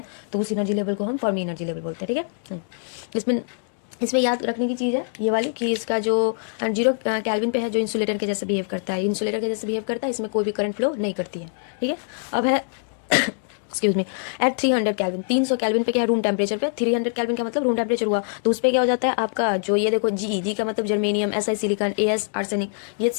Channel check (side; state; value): right; silent; digital silence